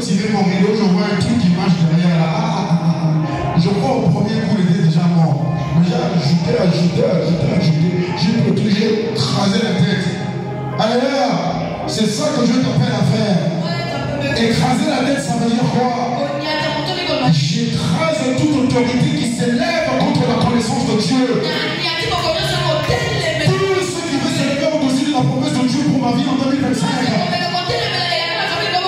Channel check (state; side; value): identical; both; correlation 1.00